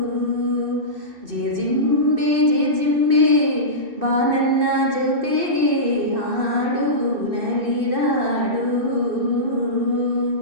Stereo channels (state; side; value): late; left; 2.6 ms